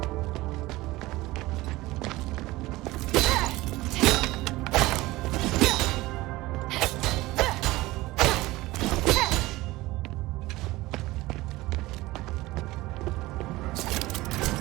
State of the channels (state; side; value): quieter; left; 19.2 dB